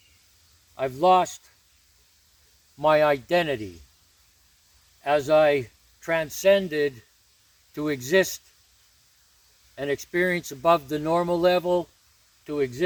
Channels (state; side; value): identical; both; correlation 1.00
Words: I've lost my identity as I transcended to exist and experience above the normal level, to